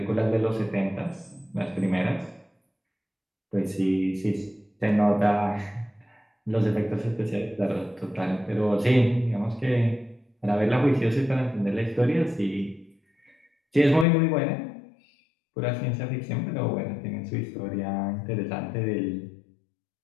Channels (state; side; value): drops out; right; at 14.1 s